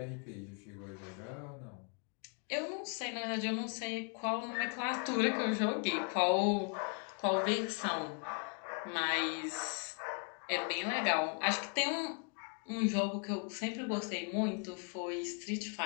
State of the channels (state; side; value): quieter; right; 38.4 dB